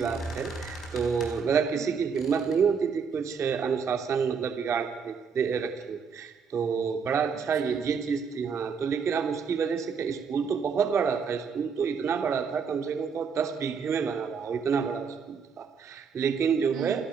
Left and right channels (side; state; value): left; quieter; 6.0 dB